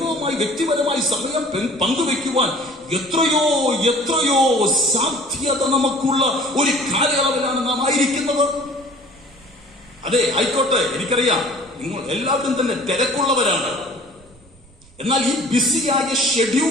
വ്യക്തിപരമായി സമയം പങ്കുവെക്കുവാൻ എത്രയോ എത്രയോ സാധ്യത നമുക്കുള്ള ഒരു കാലയളവിലാണ് നാം ആയിരിക്കുന്നത്. അതെ, ആയിക്കോട്ടെ, എനിക്കറിയാം നിങ്ങൾ എല്ലാവരും തന്നെ തിരക്കുള്ളവരാണ്. എന്നാൽ ഈ ബിസിയായ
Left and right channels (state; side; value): noise; right; rumble, 27 dB below the sound